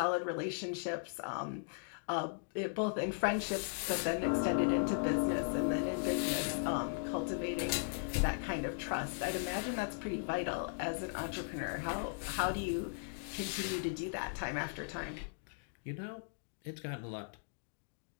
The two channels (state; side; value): silent; right; digital silence